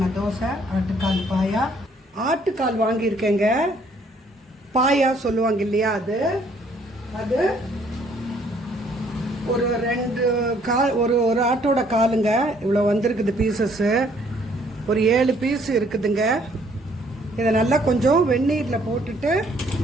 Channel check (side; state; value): both; normal; correlation 0.64